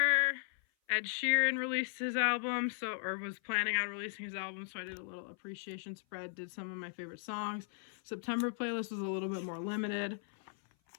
Ed Sheeran released his album, or was planning on releasing his album, so I did a little appreciation spread, did some of my favorite songs. September playlist was a little bit more limited.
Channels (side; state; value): right; silent; 53 dB below the other